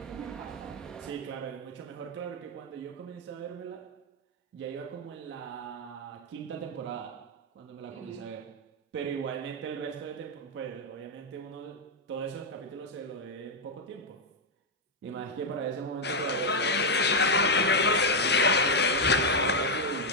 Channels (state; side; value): normal; both; correlation 0.00